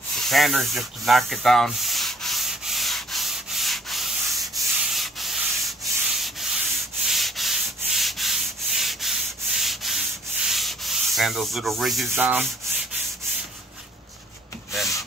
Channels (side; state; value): both; normal; correlation 0.59